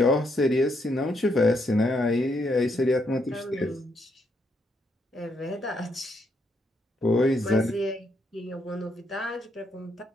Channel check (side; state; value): both; normal; correlation 0.76